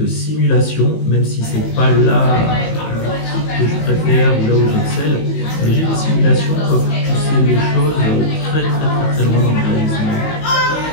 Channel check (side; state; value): right; late; 19 ms